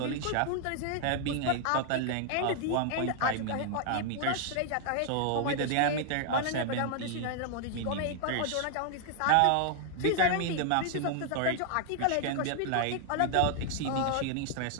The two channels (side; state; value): both; different; correlation 0.00